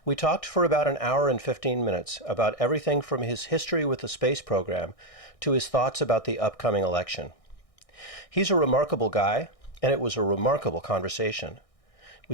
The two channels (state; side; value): late; right; 1.6 ms